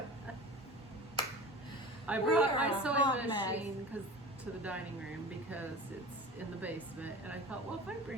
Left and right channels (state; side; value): normal; both; correlation 0.36